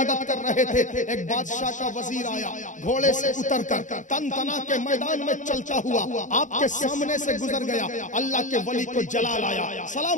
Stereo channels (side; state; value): right; late; 0.36 ms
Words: कर रहे थे। एक बादशाह का वजीर आया, घोड़े से उतरकर तन तना के मैदान में चलता हुआ आपके सामने से गुजर गया। अल्लाह के वली को जलाल आया,